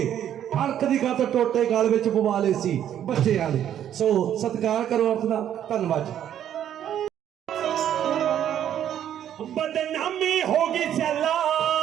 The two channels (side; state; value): left; quieter; 10.4 dB